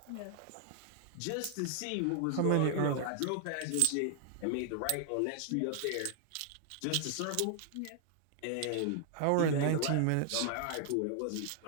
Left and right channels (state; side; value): different; both; correlation 0.00